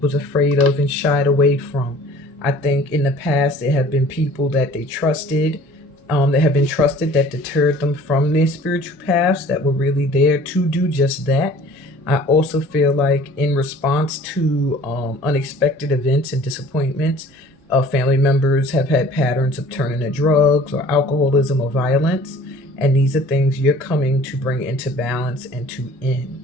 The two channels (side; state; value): both; normal; correlation 0.49